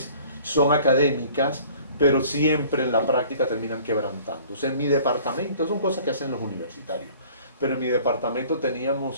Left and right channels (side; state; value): both; inverted; correlation -0.51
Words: son académicas, pero siempre en la práctica terminan quebrantándose. En mi departamento, son cosas que hacen los universitarios, pero en mi departamento